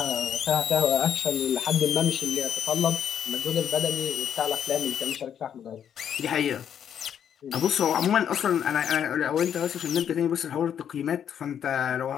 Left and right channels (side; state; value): right; quieter; 8.9 dB